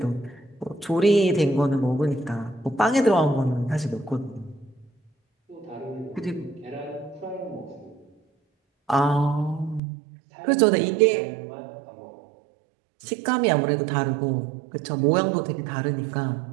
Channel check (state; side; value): drops out; left; at 9.8 s